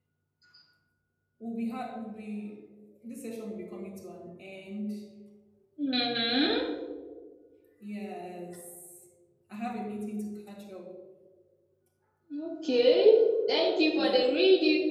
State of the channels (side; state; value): both; identical; correlation 1.00